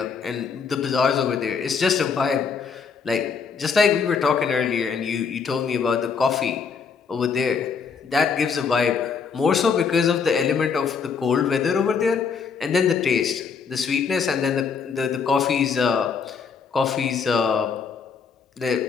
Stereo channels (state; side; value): quieter; right; 5.9 dB